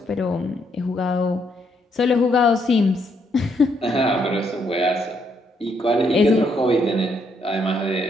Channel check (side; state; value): both; normal; correlation 0.74